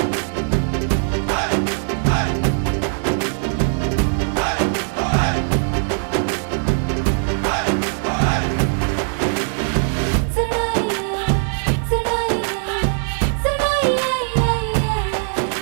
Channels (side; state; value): left; silent; 57 dB below the other